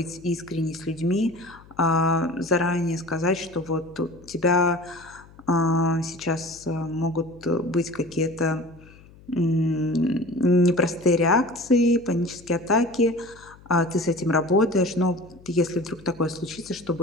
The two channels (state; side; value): noise; left; hum, 23 dB below the sound